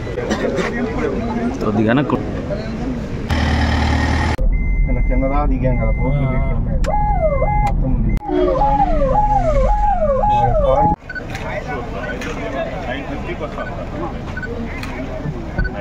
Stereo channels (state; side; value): identical; both; correlation 1.00